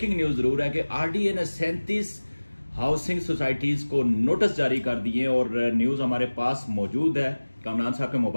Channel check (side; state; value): both; inverted; correlation -1.00